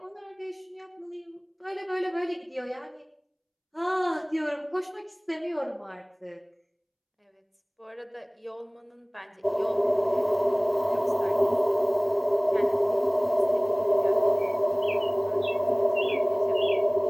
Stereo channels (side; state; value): both; identical; correlation 1.00